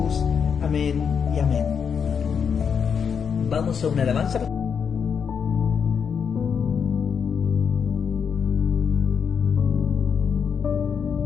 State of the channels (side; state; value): right; quieter; 6.8 dB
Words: Amén y amén. Vamos a una alabanza.